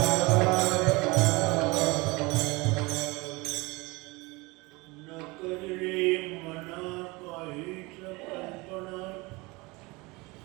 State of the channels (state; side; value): quieter; left; 24.4 dB